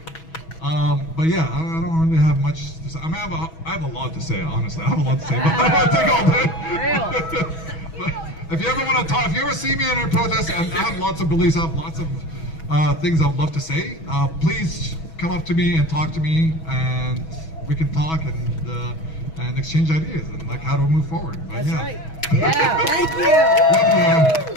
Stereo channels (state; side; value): late; right; 6.2 ms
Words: But yeah, I don't really have much to say. I mean, I have a lot to say, honestly. I have a lot to say, but I don't want to take all day. But if you ever want to talk, if you ever see me in a protest, I have lots of beliefs, I have lots of things I would love to say. Please come up to me and talk to me, and we can talk and exchange ideas and like how to move forward. But, That's yeah. right. Yeah, thank you. Love